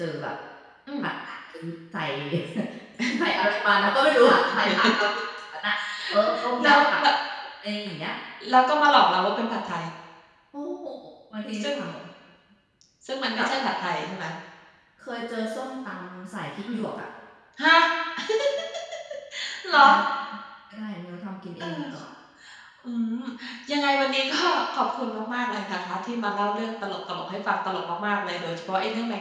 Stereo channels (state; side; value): identical; both; correlation 1.00